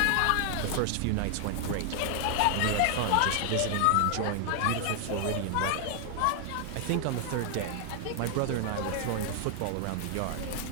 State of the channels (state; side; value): different; both; correlation 0.00